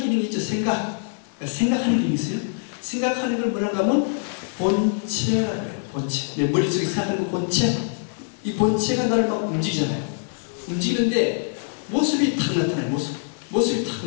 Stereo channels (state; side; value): silent; right; 63 dB below the other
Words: 있죠. 생각하는 기능이 있어요. 생각하는 걸 뭐라고 하면 본체라고 해요. 본체. 내 머릿속에 생각하는 거 본체. 이 본체가 나를 막 움직이잖아요. 움직이는데 모습이 탁 나타나요. 모습이 탁,